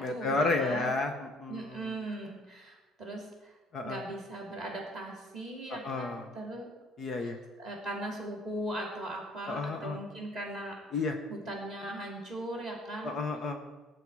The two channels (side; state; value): both; normal; correlation 0.57